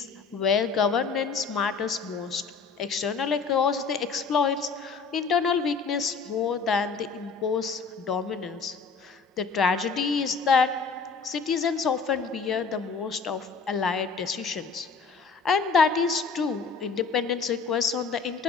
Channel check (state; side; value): quieter; right; 5.1 dB